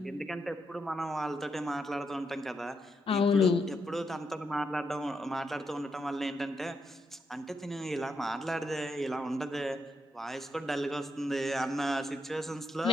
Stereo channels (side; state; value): both; normal; correlation 0.81